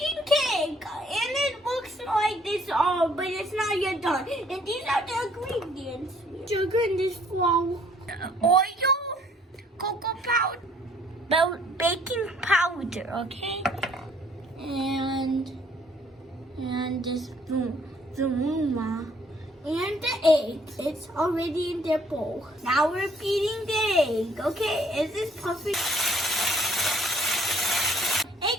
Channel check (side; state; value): both; normal; correlation 0.61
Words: cake, and it looks like this all, but it's not yet done. And these are the ingredients: sugar in this flour, oil, cocoa powder, baking powder, okay, and this zumuma. And the egg, it's already in their bowl. Now we're beating the egg, okay? Is this perfect?